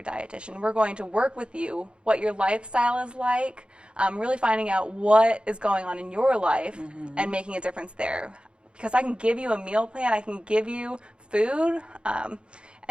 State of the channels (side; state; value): left; late; 0.055 ms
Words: dietitian. We're going to work with you, what your lifestyle is like, really finding out what is going on in your life and making a difference there. Because I can give you a meal plan, I can give you food,